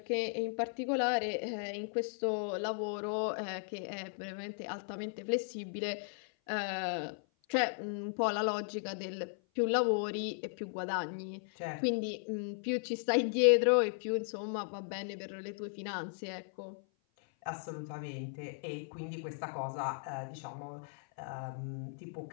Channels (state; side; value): silent; right; 54 dB below the other